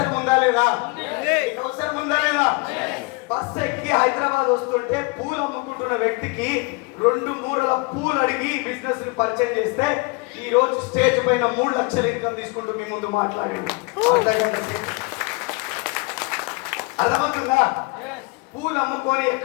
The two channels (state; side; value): quieter; right; 27.8 dB